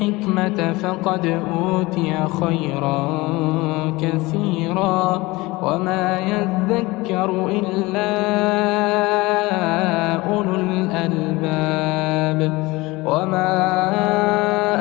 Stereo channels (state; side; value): quieter; right; 21.8 dB